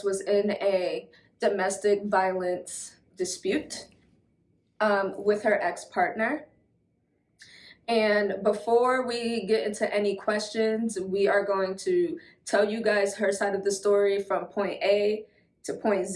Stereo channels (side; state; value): both; identical; correlation 1.00